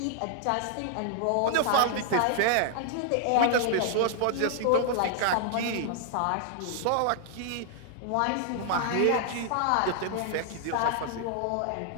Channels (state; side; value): different; both; correlation -0.01